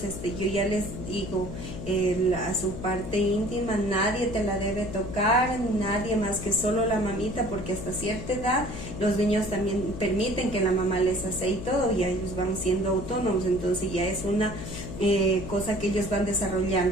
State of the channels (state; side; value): noise; left; hum, 9 dB below the sound